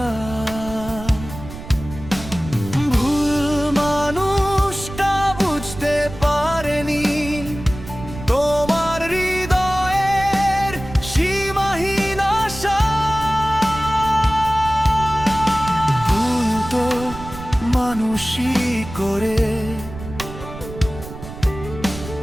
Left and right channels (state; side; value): noise; right; rumble, 12 dB below the sound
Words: ভুল মানুষটা বুঝতে পারেনি তোমার হৃদয়ের সীমাহীন আশা। ভুল তো মানুষই করে,